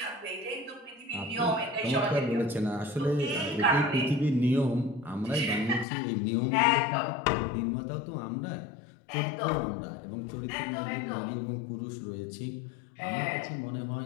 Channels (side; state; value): right; drops out; at 5.9 s